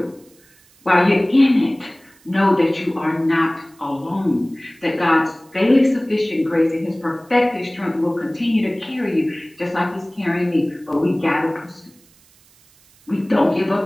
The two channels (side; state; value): right; noise; hiss, 30 dB below the sound